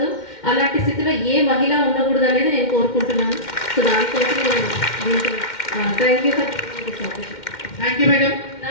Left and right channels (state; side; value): late; right; 2.1 ms